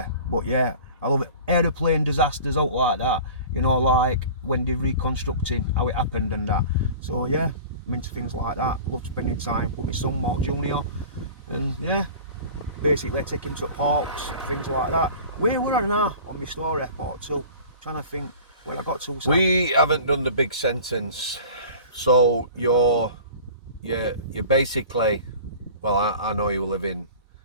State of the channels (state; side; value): inverted; both; correlation -0.41